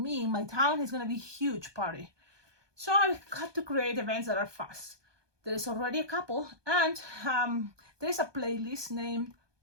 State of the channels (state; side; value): late; left; 1.2 ms